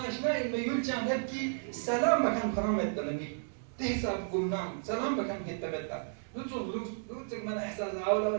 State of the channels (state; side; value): silent; left; 56 dB below the other